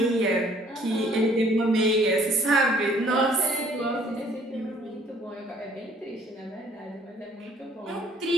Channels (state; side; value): normal; both; correlation 0.59